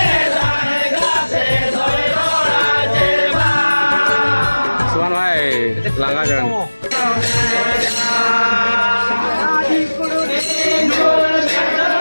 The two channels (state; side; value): inverted; both; correlation -1.00